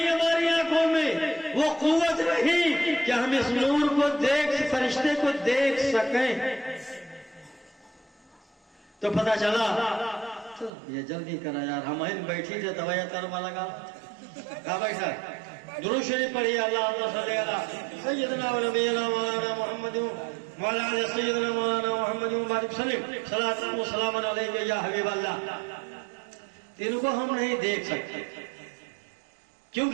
ہماری آنکھوں میں وہ قوت نہیں کہ ہم اس نور کو فرشتے کو دیکھ سکیں۔ تو پتہ چلا یہ جلدی کرا یار، ہم بیٹھی تھے دوایا ترما لگا کہاں بیٹھا؟ درود شریف پڑھیے، اللہم صلی علی سیدنا و نبینا مولانا محمد وعلی آل سیدنا مولانا محمد مبارک وسلم، صلاۃ و سلام علیک یا حبیب اللہ۔ ان کو ہم نہیں دیکھ سکتے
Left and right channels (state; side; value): drops out; left; at 10.7 s